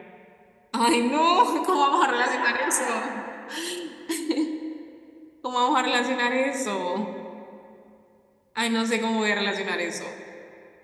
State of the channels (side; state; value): both; identical; correlation 1.00